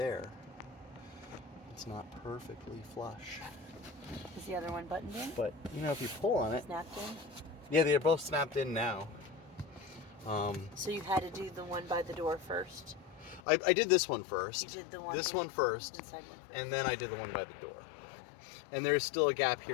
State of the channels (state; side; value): drops out; right; at 13.4 s